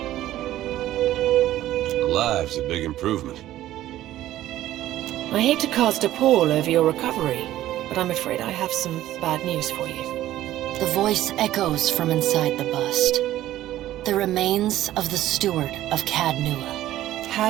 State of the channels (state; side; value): quieter; left; 13.9 dB